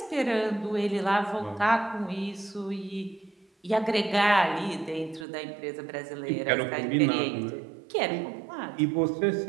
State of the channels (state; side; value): drops out; left; at 5.2 s